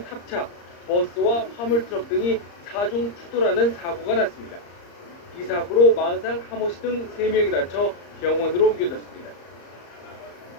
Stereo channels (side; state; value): right; late; 34 ms